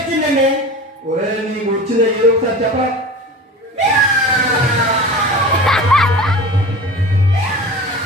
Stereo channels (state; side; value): normal; both; correlation 0.34